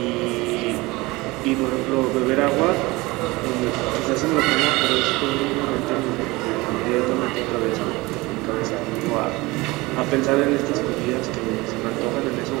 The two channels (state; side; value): quieter; left; 22.1 dB